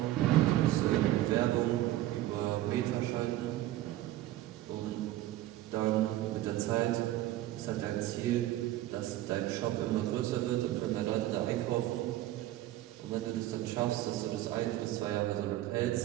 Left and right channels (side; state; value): left; quieter; 14.9 dB